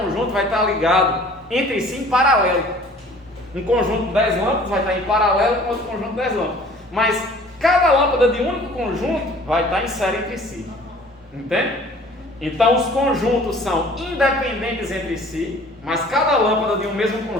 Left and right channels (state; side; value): normal; both; correlation 0.50